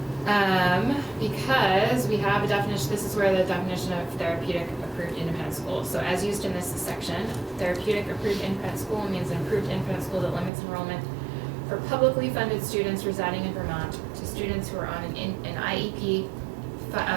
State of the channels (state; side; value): drops out; left; at 10.5 s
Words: Because we have a definition, this is where the definition of therapeutic approved independent school. So as used in this section, therapeutic approved independent school means an approved independent school that limits enrollment for publicly funded students residing in Vermont to students who are on an IEP,